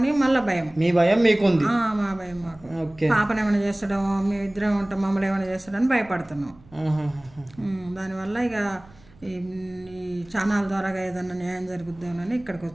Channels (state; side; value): noise; right; rumble, 25 dB below the sound